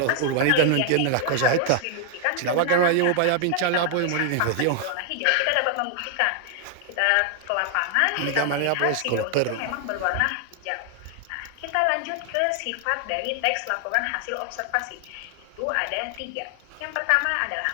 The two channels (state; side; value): different; both; correlation 0.00